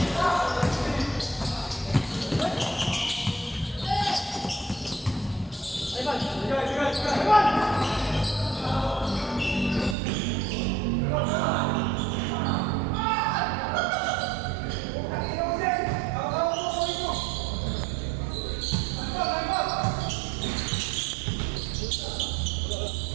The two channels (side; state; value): left; drops out; at 10.0 s